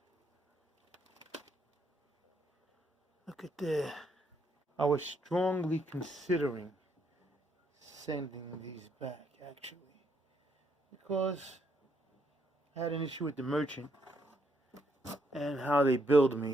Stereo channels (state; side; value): normal; both; correlation 0.74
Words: Look at that. I was strongly considering sending these back, actually, because I had an issue with the merchant and how they billed